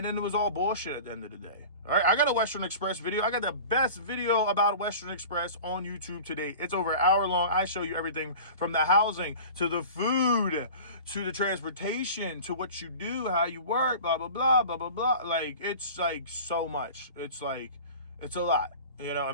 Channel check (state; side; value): inverted; both; correlation -0.38